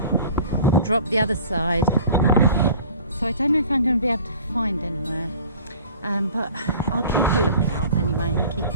drop the other side. So I don't know if I'm going to be able to find anywhere, but I'll keep a lookout anyway and keep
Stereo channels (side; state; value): both; inverted; correlation -0.45